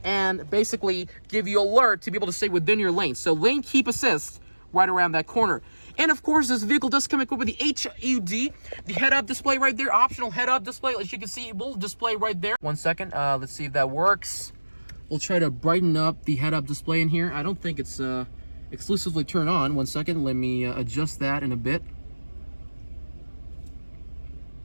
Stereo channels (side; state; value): both; inverted; correlation -1.00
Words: and basically give you alert to be able to stay within your lane. So lane keep assist right around that corner. And of course, this vehicle does come equipped with the HUD, the head-up display right there, optional head-up display. As you can see, it will display right there. 1 second, let's see if that works. We'll try to brighten up the head-up display in here. I don't think it's exclusively turned on. 1 second, let me adjust that in a bit.